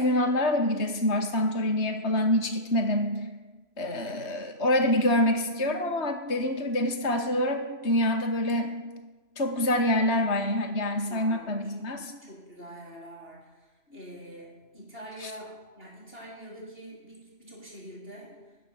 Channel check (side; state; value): right; late; 3.2 ms